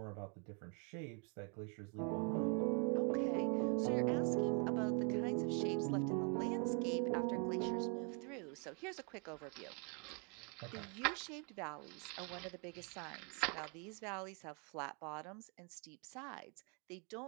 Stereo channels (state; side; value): quieter; left; 37.8 dB